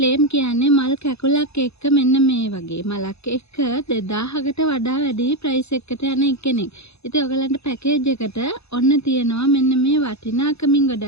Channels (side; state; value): right; late; 0.79 ms